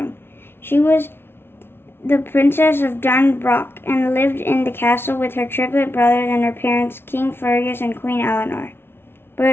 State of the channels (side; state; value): right; late; 0.11 ms